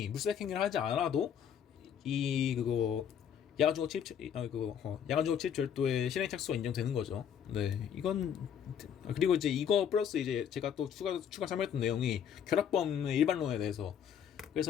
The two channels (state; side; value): quieter; right; 8.4 dB